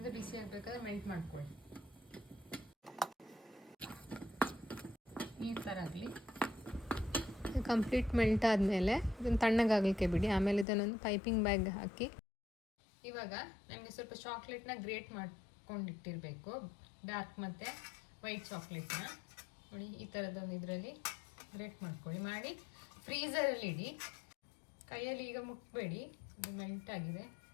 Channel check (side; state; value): right; drops out; at 10.7 s